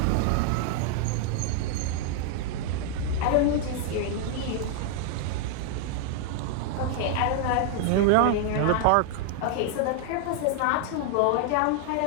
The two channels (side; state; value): both; different; correlation 0.00